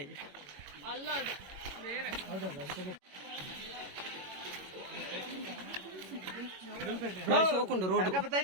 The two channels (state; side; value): late; left; 21 ms